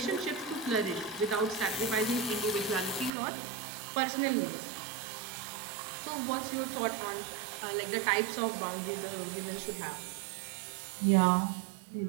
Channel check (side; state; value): left; drops out; at 3.1 s